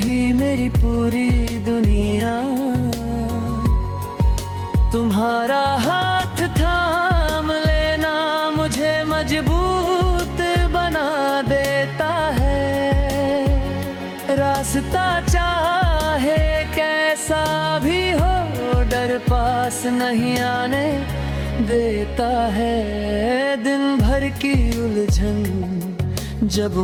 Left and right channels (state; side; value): identical; both; correlation 1.00